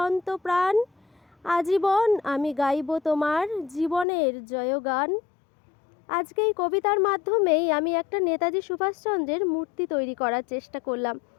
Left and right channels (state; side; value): drops out; right; at 4.0 s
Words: আজীবন আমি গাইব তোমার জীবনের জয়গান। আজকে এই কবিতার মাধ্যমেই আমি একটা নেতাজি সুভাষচন্দ্রের মূর্তি তৈরি করার চেষ্টা করলাম।